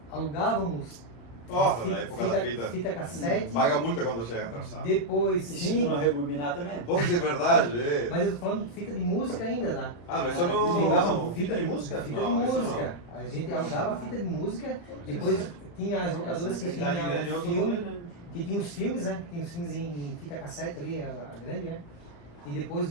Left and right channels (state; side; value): late; right; 35 ms